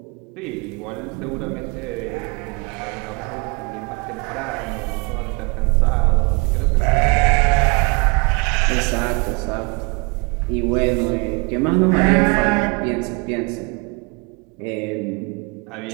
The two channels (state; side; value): quieter; left; 29.7 dB